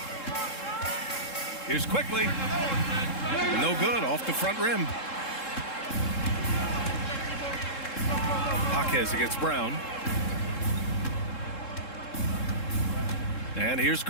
Here's quickly. No good, off the front rim. Jaquez against Brown. And here's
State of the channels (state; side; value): late; right; 3.7 ms